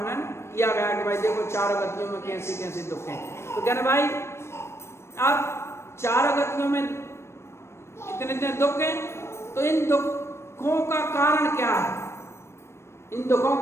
किया गया कि भाई देखो चारों गतियों में कैसे कैसे दुख हैं। तो कहना भाई अब चारों गतियों में इतने इतने दुख हैं, तो इन दुखों का कारण क्या है? इन दुखों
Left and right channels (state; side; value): late; right; 0.13 ms